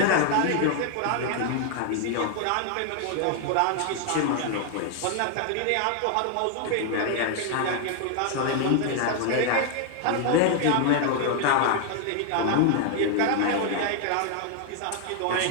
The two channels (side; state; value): both; different; correlation 0.00